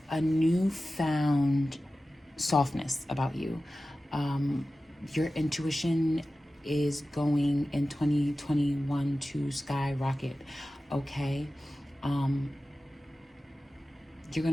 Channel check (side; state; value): both; normal; correlation 0.95